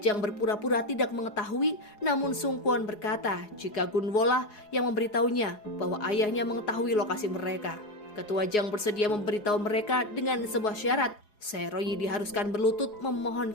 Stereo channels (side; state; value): right; late; 4.8 ms